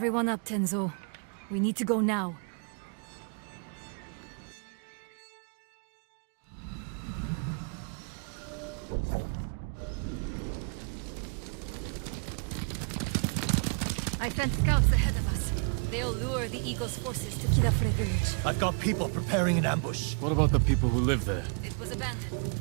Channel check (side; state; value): left; quieter; 39.9 dB